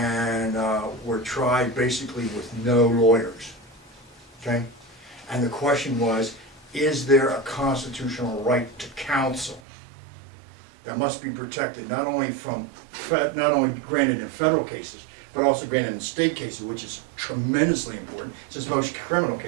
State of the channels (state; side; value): drops out; left; at 9.6 s